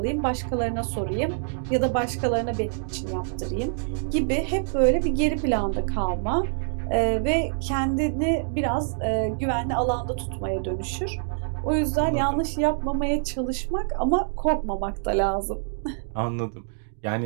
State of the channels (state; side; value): silent; left; digital silence